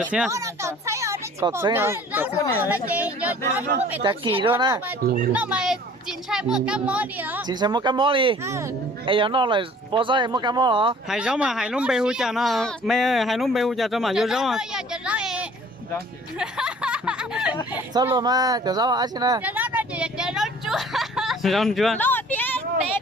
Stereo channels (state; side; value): normal; both; correlation 0.51